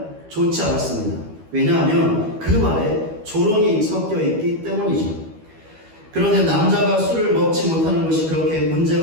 좋지 않았습니다. 왜냐하면 그 말에 조롱이 섞여 있기 때문이죠. 그런데 남자가 술을 먹지 못하는 것이 그렇게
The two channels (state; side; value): late; left; 12 ms